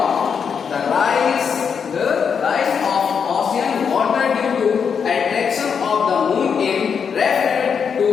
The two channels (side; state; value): right; quieter; 6.7 dB